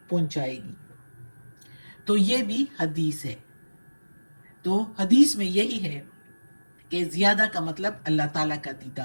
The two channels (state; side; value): inverted; both; correlation -1.00